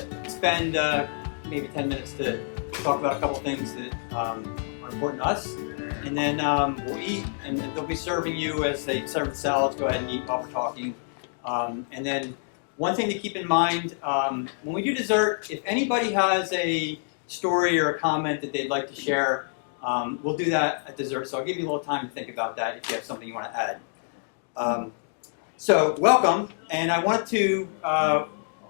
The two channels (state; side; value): silent; right; digital silence